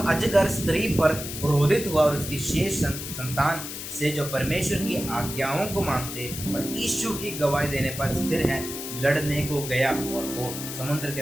अजगर स्त्री पर क्रोधित हुआ और उसकी शेष संतान से जो परमेश्वर की आज्ञाओं को मानते और यीशु की गवाही देने पर स्थिर हैं लड़ने को गया, और वो समुद्र के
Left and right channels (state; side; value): noise; left; hiss, 8 dB below the sound